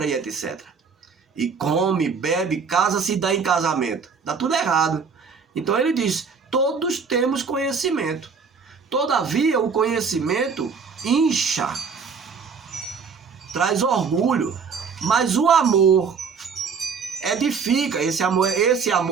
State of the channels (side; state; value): left; quieter; 5.6 dB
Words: e etc. E come, bebe, casa-se e dá em casamento. Dá tudo errado. Então ele diz, todos temos conhecimento. Todavia o conhecimento incha, traz orgulho, mas o amor edifica. Esse